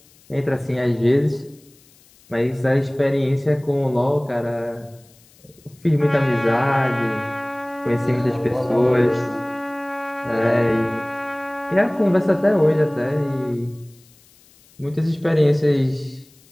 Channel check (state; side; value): noise; left; hiss, 29 dB below the sound